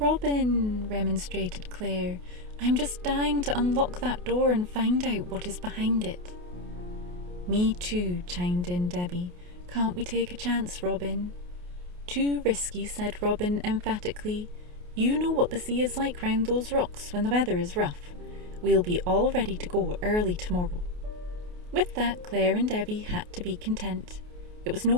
remonstrated Claire, "I'm just dying to unlock that door and find out what is behind it." "Me too," chimed in Debbie. "Can't we take a chance, Robin?" "Too risky," said Robin emphatically. "You know what the sea is like round those rocks when the weather is rough. We'll be all ready to go early tomorrow." With that, Claire and Debbie had to be content. It was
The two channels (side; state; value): left; late; 28 ms